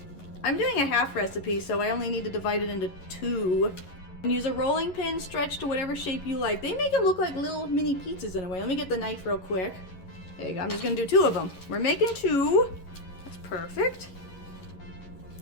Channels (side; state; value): right; late; 11 ms